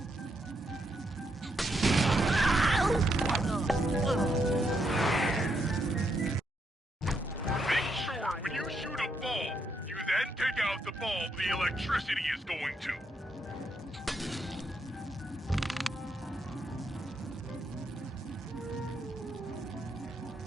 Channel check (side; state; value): both; normal; correlation 0.79